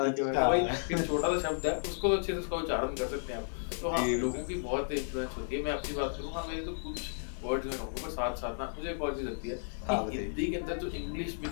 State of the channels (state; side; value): silent; right; digital silence